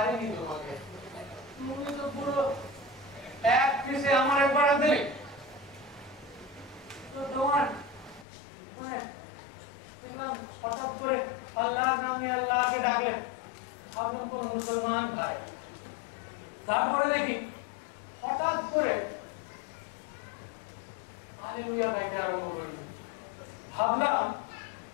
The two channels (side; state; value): right; drops out; at 8.2 s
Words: তোমাকে। তুমি তো পুরো এক পিসে আমার একবার দিলে। তো তোমার মানে হঠাৎ করে আল্লাহর নামে আল্লাহকে ডাকলেন, ভাবলাম কোন মুসলমান ভাই। তারপরে দেখি হঠাৎ করে হালেলুয়া গাইতে আরম্ভ করলেন। ভাবলাম,